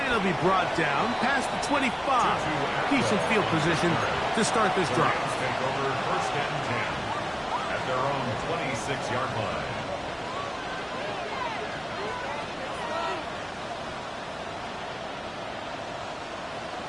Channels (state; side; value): identical; both; correlation 1.00